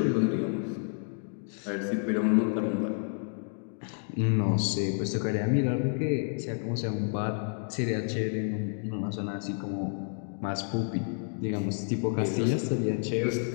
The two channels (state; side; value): silent; right; 58 dB below the other